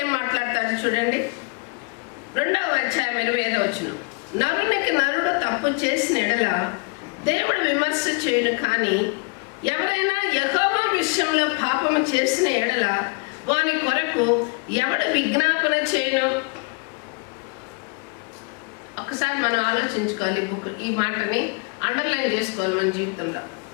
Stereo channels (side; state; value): right; quieter; 31.6 dB